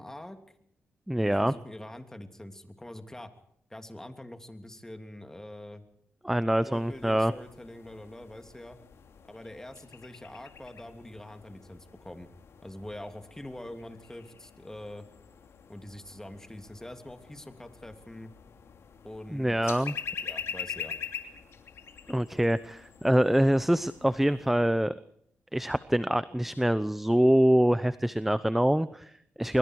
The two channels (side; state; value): both; normal; correlation 0.97